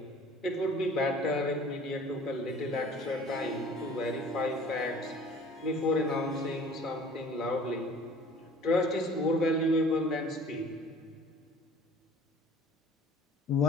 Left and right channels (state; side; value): normal; both; correlation 0.48